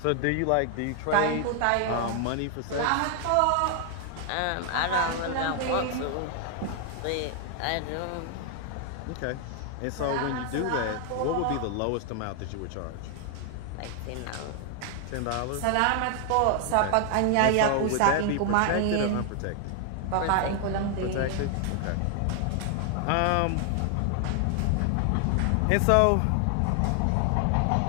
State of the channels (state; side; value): different; both; correlation 0.00